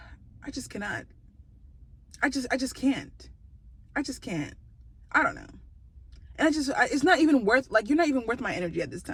just cannot. I just can't. I just can't. I don't know. And it's not even worth, like, you're not even worth my energy at this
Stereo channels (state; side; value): identical; both; correlation 1.00